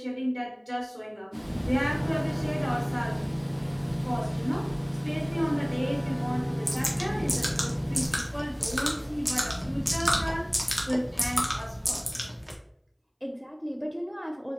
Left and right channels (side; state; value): both; identical; correlation 1.00